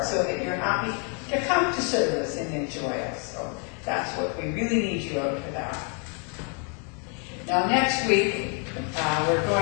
so that you're happy to come to service and enjoy us. So that's what we really need you out for that. Now next week, we're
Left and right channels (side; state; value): right; quieter; 38.0 dB